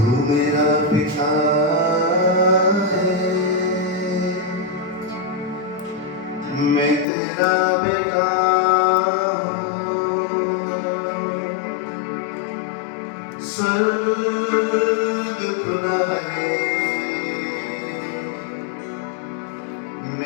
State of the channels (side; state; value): right; drops out; at 7.1 s